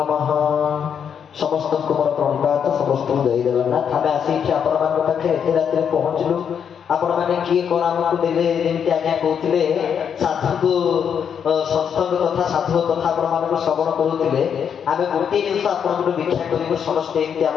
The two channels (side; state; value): right; quieter; 7.7 dB